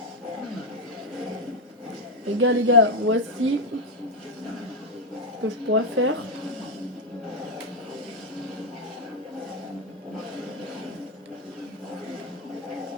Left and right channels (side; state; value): both; normal; correlation 0.05